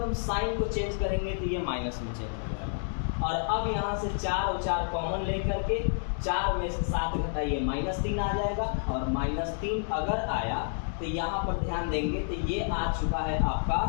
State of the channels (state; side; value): silent; right; digital silence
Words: हम साइन को चेंज करेंगे तो ये माइनस में चेंज हो जाएगा। और अब यहाँ से 4 और 4 कॉमन लेकर के 4 में से 7 घटाइए, -3 आ जाएगा। और -3 अगर आया तो यहाँ पर ध्यान देंगे तो ये आ चुका है